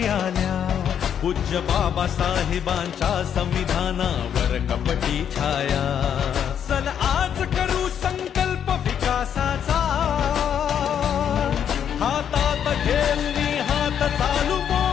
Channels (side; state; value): right; quieter; 8.7 dB